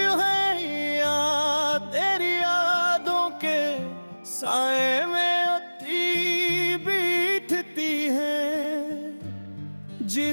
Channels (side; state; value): both; inverted; correlation -1.00